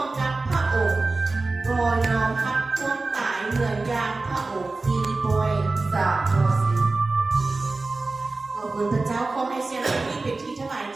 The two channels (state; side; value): quieter; left; 3.5 dB